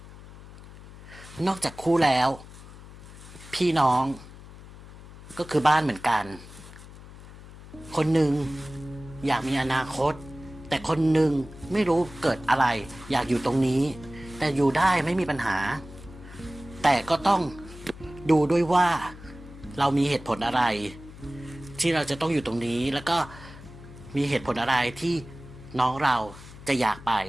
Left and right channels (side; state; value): left; noise; hum, 17 dB below the sound